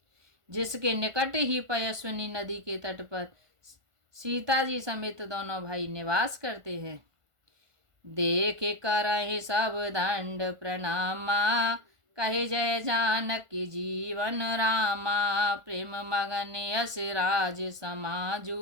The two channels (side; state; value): left; late; 1.4 ms